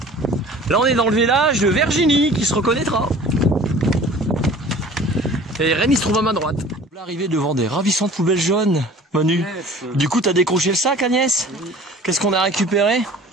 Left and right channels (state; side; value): normal; both; correlation 0.46